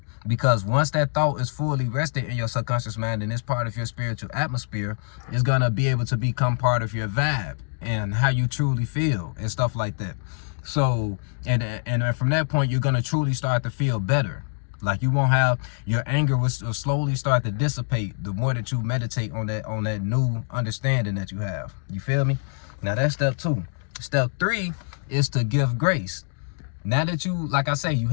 Because once that thought is fully rested in your subconscious mind and it's part of your spiritual atmosphere, it's going to be able to become part of your vibe and how you truly feel and stuff like that. So, and from that point, you're going to truly start to feel better. Like, you won't have, your anger will slowly start to dissipate the more that you meditate on that new understanding that you have. You feel me? Now that's step 2. Step 3 is to give grace. Now that you, like I say, you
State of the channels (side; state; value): right; silent; digital silence